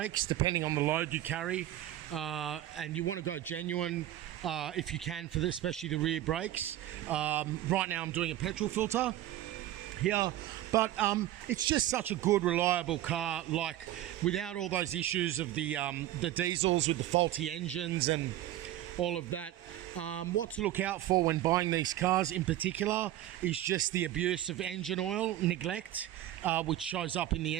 depending on the load you carry. And you want to go genuine if you can for this, especially the rear brakes. Right now I'm doing a petrol filter here, but it's just such a good, reliable car, like without all those issues of the diesels with the faulty engines and all of that. What to look out for when buying these cars in particular is just the abuse of engine oil neglect, which shows up in the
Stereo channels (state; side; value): quieter; left; 13.7 dB